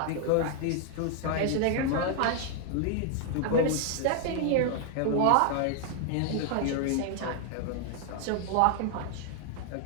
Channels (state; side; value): different; both; correlation 0.00